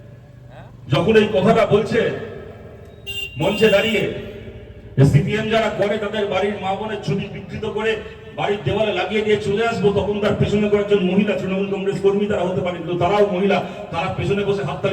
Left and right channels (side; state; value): both; identical; correlation 1.00